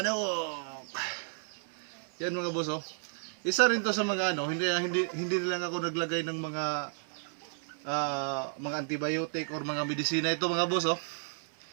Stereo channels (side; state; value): left; silent; 56 dB below the other